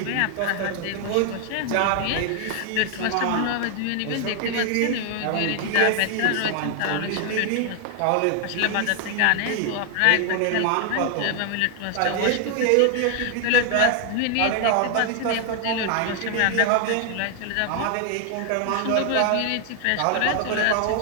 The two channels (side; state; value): both; different; correlation 0.00